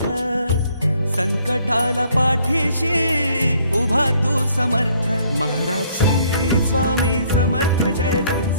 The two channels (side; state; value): both; inverted; correlation -0.64